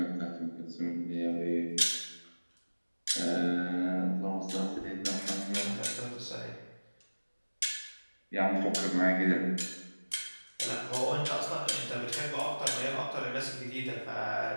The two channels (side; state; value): both; inverted; correlation -1.00